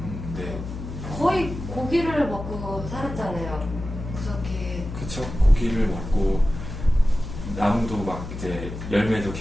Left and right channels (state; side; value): noise; left; hum, 8 dB below the sound